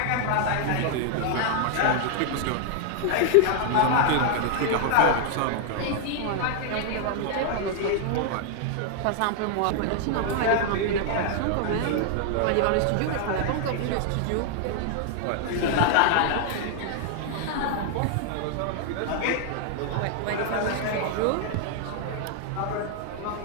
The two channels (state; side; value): different; both; correlation 0.00